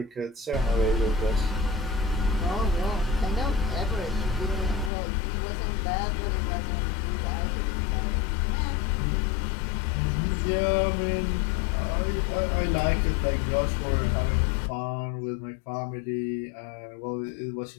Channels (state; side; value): drops out; right; at 4.9 s